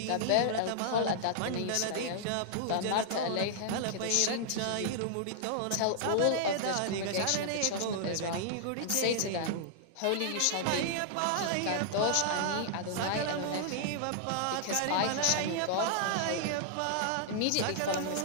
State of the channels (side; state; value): both; different; correlation -0.01